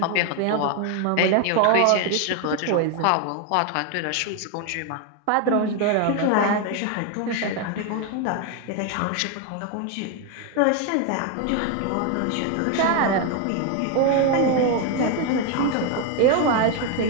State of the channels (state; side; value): different; both; correlation 0.01